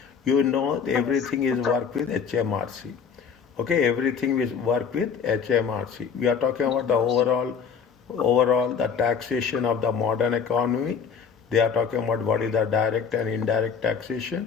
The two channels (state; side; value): quieter; right; 6.5 dB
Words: you know everything is work with HMRC. Okay, everything is work with HMRC. We are talking about the overall the taxation of the modern economy. They are talking about what is the direct and indirect